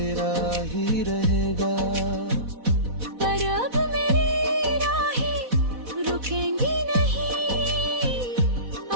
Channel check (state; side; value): late; left; 4.1 ms